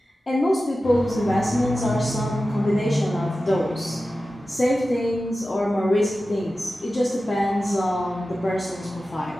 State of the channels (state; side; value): normal; both; correlation 0.94